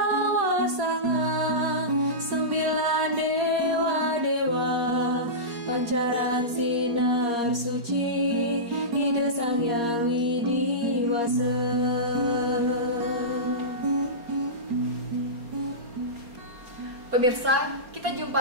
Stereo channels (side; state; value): left; late; 4.2 ms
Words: Sanga, 9 dewa-dewa, pancaran sinar suci, ide Sang Hyang Widiwasa. Pemirsa, kita jumpa